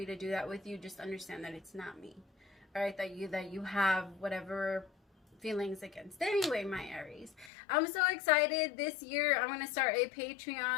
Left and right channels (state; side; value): drops out; right; at 7.5 s